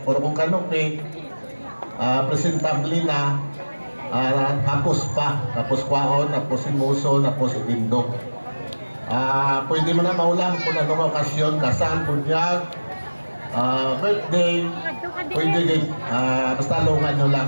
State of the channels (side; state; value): both; inverted; correlation -1.00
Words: Pero kung kanupi, presentable na, tapos pa, tapos kwaon, tapos imuso, tapos ibindog. Pwede mo na maulang kung anong okasyon, kasal, bunyag, birthday, pwede din, basta lungan nyo